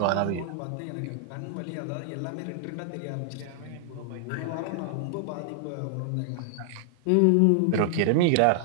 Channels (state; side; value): different; both; correlation -0.01